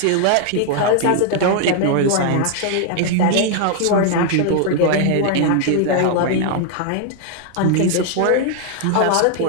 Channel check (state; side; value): different; both; correlation 0.00